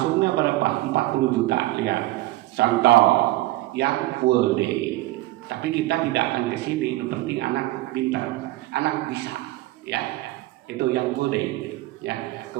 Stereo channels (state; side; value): quieter; left; 18.2 dB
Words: berapa? 40 juta. Lihat. Contoh yang full day. Tapi kita tidak akan ke sini. Yang penting anak pintar, anak bisa. Ya. Itu yang full day, ya.